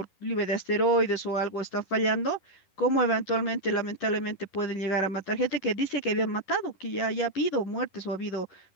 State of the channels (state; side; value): late; right; 11 ms